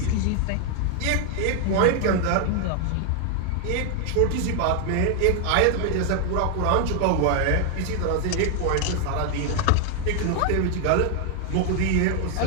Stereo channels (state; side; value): different; both; correlation 0.00